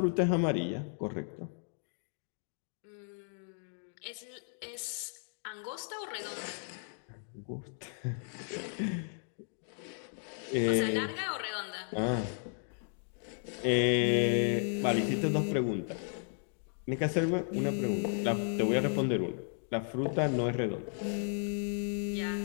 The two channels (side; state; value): right; silent; 55 dB below the other